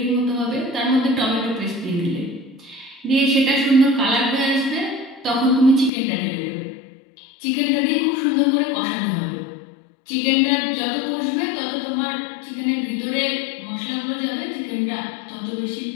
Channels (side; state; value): right; drops out; at 5.9 s